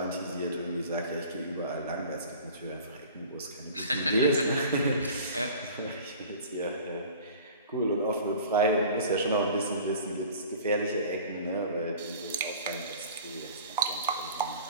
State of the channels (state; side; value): inverted; both; correlation -0.43